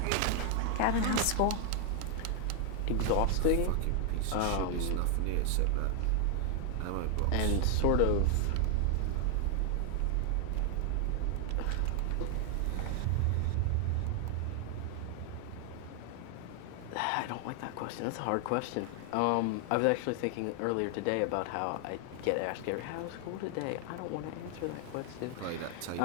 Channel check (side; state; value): both; different; correlation 0.00